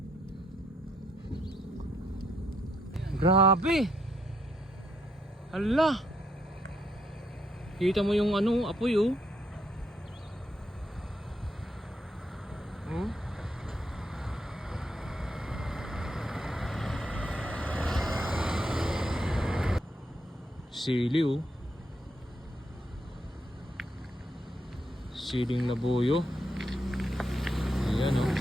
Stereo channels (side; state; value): both; normal; correlation 0.76